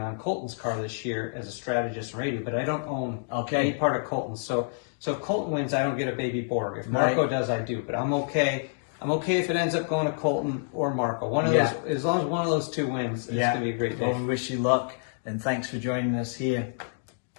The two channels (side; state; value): right; silent; digital silence